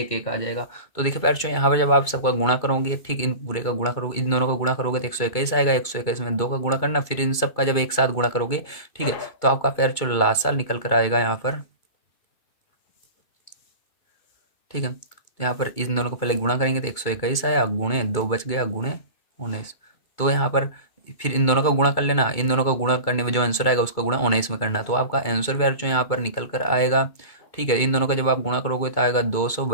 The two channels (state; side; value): late; right; 2.2 ms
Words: एक आ जाएगा। तो देखिए पैर यहाँ पर जब आप सबका गुणा करोगे, ठीक, इन पूरे का गुणा करोगे, इन दोनों का गुणा करोगे तो 121 आएगा, 121 में 2 का गुणा करना, फिर इन सब का जब एक साथ गुणा करोगे, ठीक है, तो आपका पैर जो लासा निकल कर आएगा यहाँ पर, ठीक है। तो यहाँ पर इन दोनों को पहले गुणा करेंगे तो 121 आया, गुणे 2 बच गया, गुणे 19। तो यहाँ पर फिर इन दोनों का गुणा कर लेना, इन दोनों का गुणा करने में जो आंसर आएगा उसका गुणा 19 में करना, तो आपका आंसर भी जो यहाँ पर निकल कर आएगा, ठीक है। इन दोनों का जब आप गुणा करोगे तो आएगा